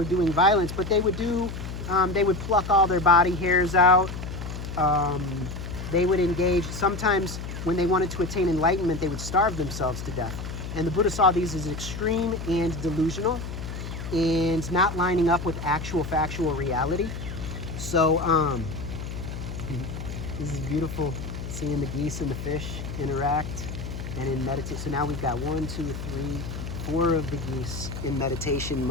doing violence, but they would pluck all their body hairs out. They would engage, sometimes when they wanted to attain enlightenment, they would starve themselves to death. And the Buddha saw these as extreme and delusional and not lining up with actual factual reality. So this is beautiful, seeing the geese and the fish interact and in meditate. So now we've got 1, 2, 3, 4 of the geese in meditation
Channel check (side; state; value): left; noise; hum, 7 dB below the sound